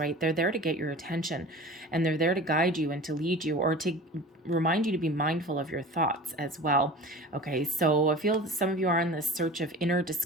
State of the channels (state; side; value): normal; both; correlation 0.38